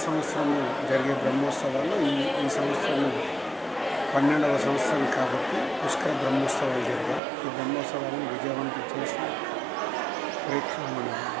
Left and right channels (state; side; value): drops out; left; at 7.2 s